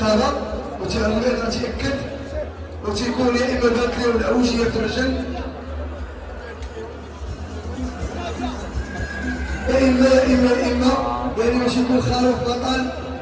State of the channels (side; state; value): both; identical; correlation 1.00